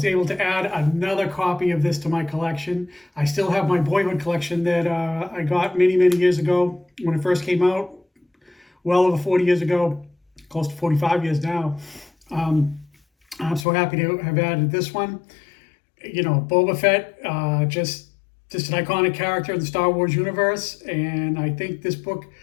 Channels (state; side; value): drops out; right; at 13.7 s